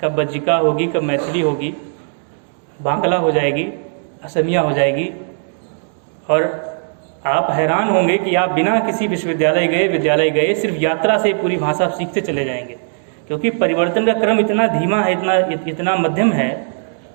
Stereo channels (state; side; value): silent; left; digital silence